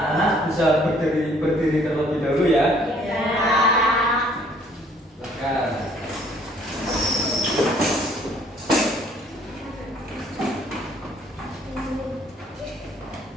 bisa berdiri terlebih dahulu ya. Iya. Silakan.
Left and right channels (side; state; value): both; normal; correlation 0.60